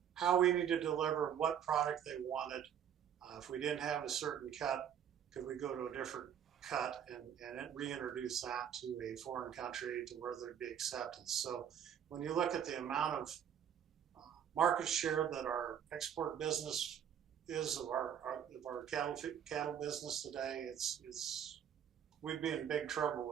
how we need to deliver what product they wanted. If we didn't have a certain cut, could we go to a different cut and reintroduce that to a foreign country to where there'd be acceptance. So when you look at the amount of market share that our export business is of our cattle business today, we'd be in big trouble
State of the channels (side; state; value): left; quieter; 9.0 dB